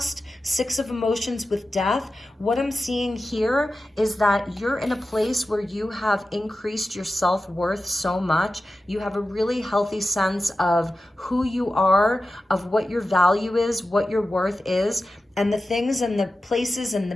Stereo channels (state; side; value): normal; both; correlation 0.93